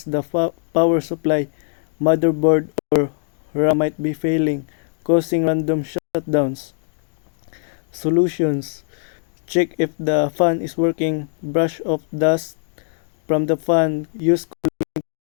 the power supply, motherboard, or RAM might be failing, causing random shutdowns. Solutions. Check if the fan is working, brush off dust from the fan, use cooling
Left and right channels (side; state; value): right; silent; 65 dB below the other